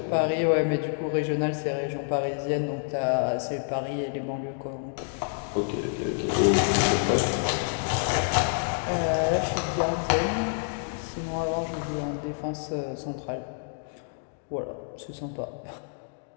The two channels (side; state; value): right; silent; digital silence